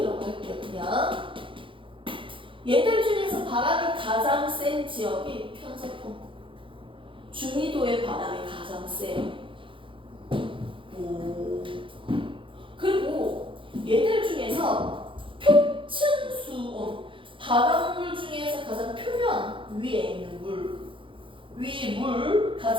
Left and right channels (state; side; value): late; left; 0.25 ms